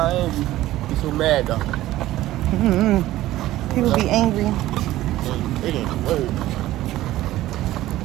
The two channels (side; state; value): left; quieter; 15.4 dB